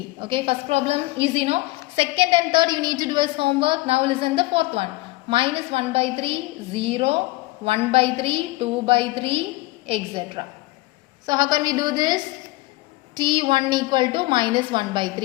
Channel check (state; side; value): quieter; right; 20.5 dB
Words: Okay, first problem easy, no? Second and third you need to do as homework. Now listen the fourth one. Minus 1 by 3, 0, 1 by 3, 2 by 3, etc. So how can we do this? T1 equal to minus 1 by